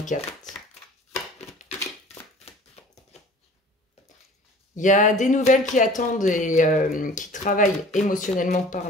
Il y a des nouvelles qui attendent et qui travaillent émotionnellement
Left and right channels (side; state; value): both; normal; correlation 0.46